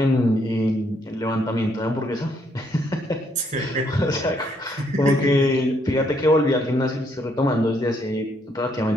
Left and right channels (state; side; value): normal; both; correlation 0.72